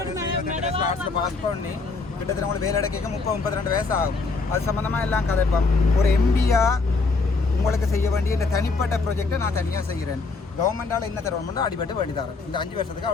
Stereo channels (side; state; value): right; quieter; 4.0 dB